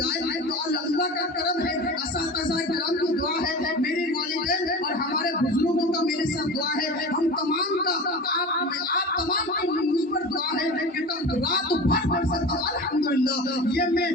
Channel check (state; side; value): normal; both; correlation 0.32